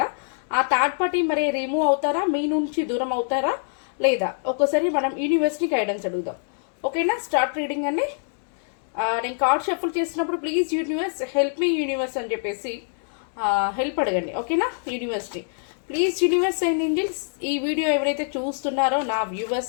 ఆ థర్డ్ పార్టీ మరి రిమూవ్ అవుతారా, మీ నుంచి దూరం అవుతారా లేదా? ఒకసారి మనం యూనివర్స్ని గైడెన్స్ అడుగుదాం. ఓకేనా? స్టార్ట్ రీడింగ్ అండి. నేను కార్డ్ షఫుల్ చేసినప్పుడు please universe help me universe అని చెప్పేసి హెల్ప్ అడగండి. ఓకేనా? యూనివర్స్ని ప్లీజ్ యూనివర్స్ అండ్ ఏంజల్స్, ఈ వీడియో ఎవరైతే చూస్తున్నారో నా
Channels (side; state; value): right; silent; digital silence